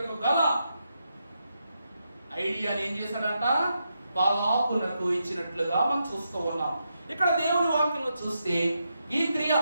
గల ఐడియాని ఏం చేశాడంట? బాలాకునకు ఇచ్చినట్లుగా మనం చూస్తూ ఉన్నాం. ఇక్కడ దేవుని వాక్యంలో చూస్తే ఈ క్రియ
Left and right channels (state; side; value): inverted; both; correlation -0.84